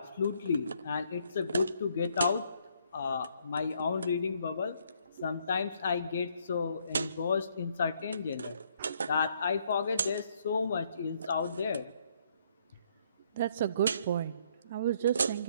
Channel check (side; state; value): both; inverted; correlation -0.69